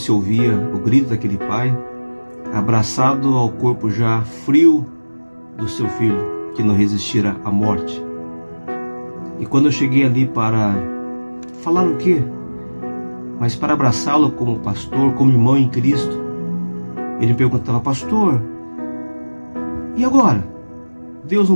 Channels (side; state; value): both; inverted; correlation -1.00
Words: se ouvia o grito daquele pai, abraçado ao corpo já frio do seu filho, que não resistira à morte. E quando eu cheguei ali para falar o quê? Mas para abraçá-lo como pastor, como irmão em Cristo, ele me perguntava: pastor, e agora? Deus